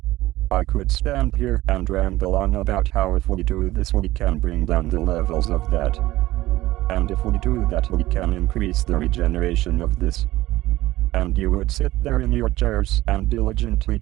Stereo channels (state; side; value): quieter; left; 16.9 dB